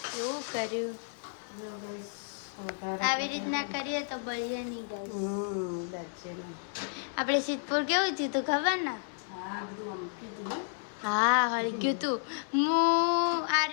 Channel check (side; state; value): right; silent; 57 dB below the other